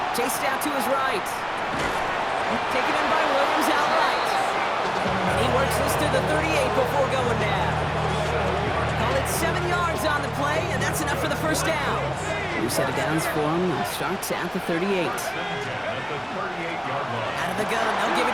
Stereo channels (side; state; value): both; identical; correlation 1.00